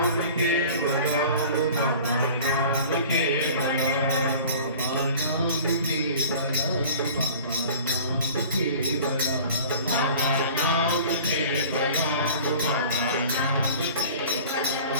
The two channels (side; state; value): both; inverted; correlation -0.43